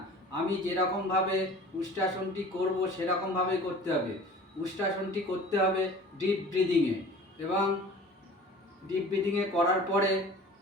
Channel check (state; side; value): normal; both; correlation 0.43